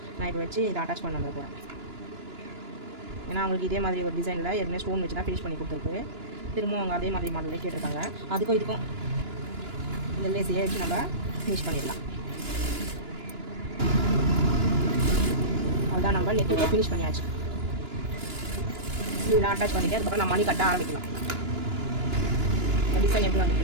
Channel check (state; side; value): late; left; 2.9 ms